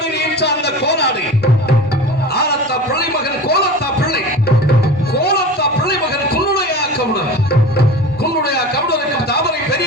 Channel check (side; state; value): both; normal; correlation 0.34